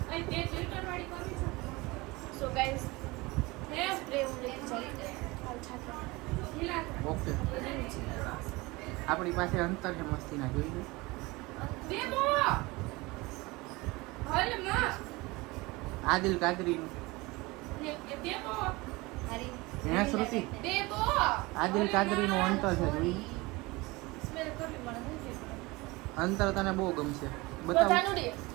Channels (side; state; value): left; quieter; 22.9 dB